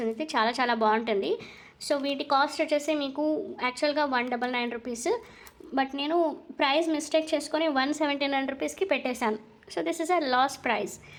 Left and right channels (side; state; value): both; identical; correlation 1.00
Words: ఇది చాలా చాలా బాగుంటుంది. సో వీటి కాస్ట్ వచ్చేసి మీకు యాక్చువల్గా 199 రూపీస్. బట్ నేను ప్రైస్ మిస్టేక్ చేసుకొని 179 రూపీస్కి పెట్టేశాను. So this is a loss price.